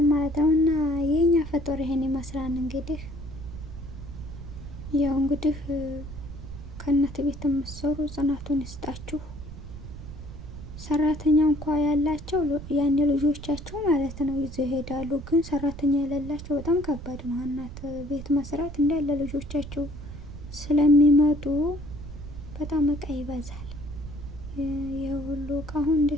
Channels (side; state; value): right; noise; rumble, 11 dB below the sound